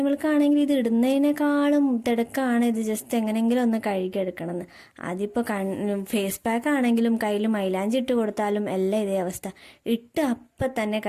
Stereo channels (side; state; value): both; identical; correlation 1.00